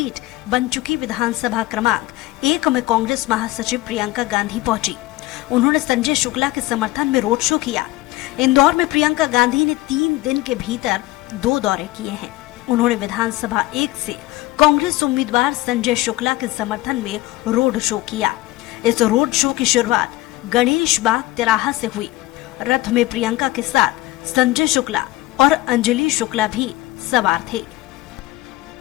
बन चुकी विधानसभा क्रमांक 1 में कांग्रेस महासचिव प्रियंका गांधी पहुंची। उन्होंने संजय शुक्ला के समर्थन में रोड शो किया। इंदौर में प्रियंका गांधी ने 3 दिन के भीतर 2 दौरे किए हैं। उन्होंने विधानसभा 1 से कांग्रेस उम्मीदवार संजय शुक्ला के समर्थन में रोड शो किया। इस रोड शो की शुरुआत गणेश बाग तिराहा से हुई। रथ में प्रियंका के साथ संजय शुक्ला और अंजलि शुक्ला भी सवार थे।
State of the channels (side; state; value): right; quieter; 18.4 dB